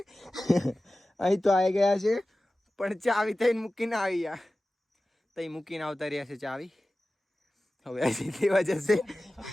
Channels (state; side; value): normal; both; correlation 0.96